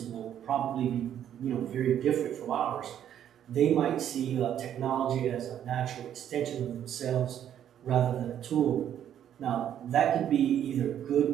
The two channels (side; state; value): left; quieter; 10.2 dB